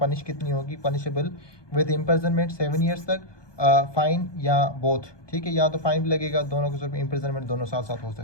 कितनी होगी? पनिशेबल विद इम्प्रिजनमेंट 7 ईयर्स तक, फाइन या बोथ। ठीक है, या तो फाइन भी लगेगा, दोनों के साथ इम्प्रिजनमेंट दोनों साथ साथ हो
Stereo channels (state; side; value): late; right; 1.2 ms